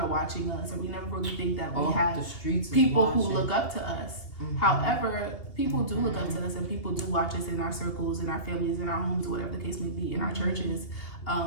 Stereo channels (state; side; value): late; right; 2.8 ms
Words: watching us, or we never really think that we have people who look up to us. However, people do look up to us, and people do watch us in our circles, in our families, in our homes, whatever the case may be, in our churches.